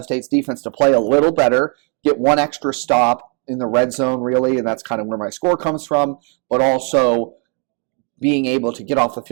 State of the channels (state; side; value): quieter; left; 39.5 dB